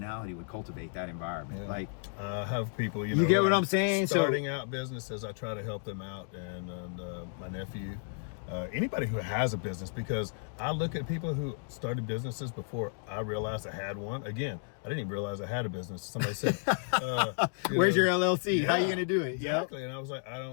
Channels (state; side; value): silent; right; 56 dB below the other